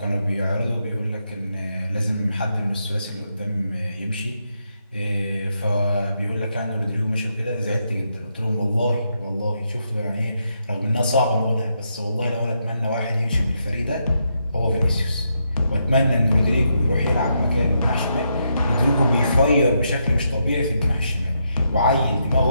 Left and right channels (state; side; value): inverted; both; correlation -0.80